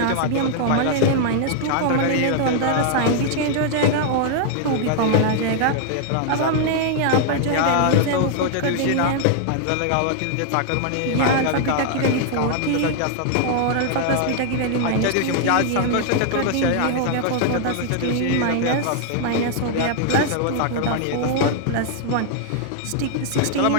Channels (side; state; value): both; different; correlation 0.00